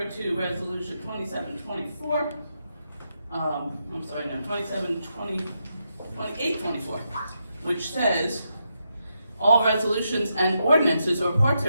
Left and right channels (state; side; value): inverted; both; correlation -0.83